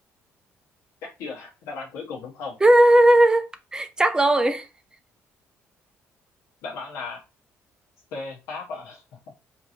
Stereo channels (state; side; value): normal; both; correlation 0.94